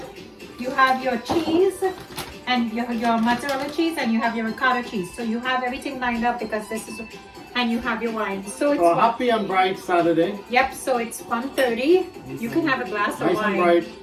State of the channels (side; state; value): both; identical; correlation 1.00